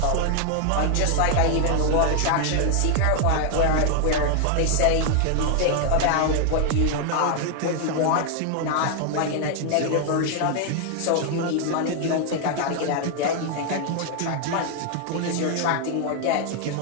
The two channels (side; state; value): both; different; correlation 0.00